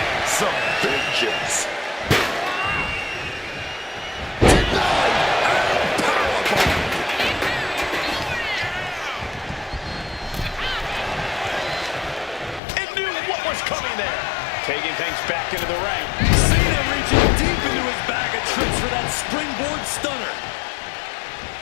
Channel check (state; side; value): drops out; right; at 12.6 s